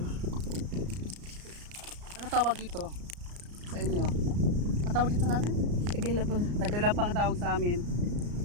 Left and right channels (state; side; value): late; left; 34 ms